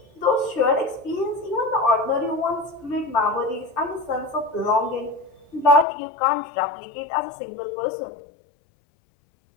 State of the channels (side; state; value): right; drops out; at 5.9 s